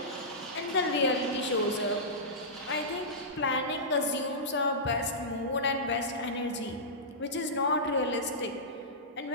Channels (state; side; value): normal; both; correlation -0.17